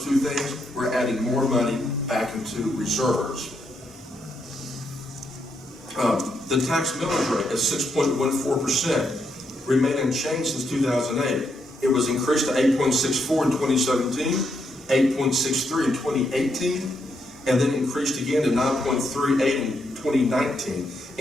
two things, we're adding more money back into reserves. The tax millage rate at 6.14% remained unchanged since 2008. It was increased to 8.64 in 2017, 8.63 in 2018, and then increased again to 9.38 in 2019.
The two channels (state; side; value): normal; both; correlation 0.79